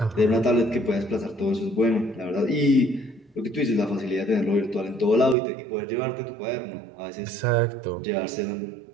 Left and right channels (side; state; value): left; drops out; at 5.4 s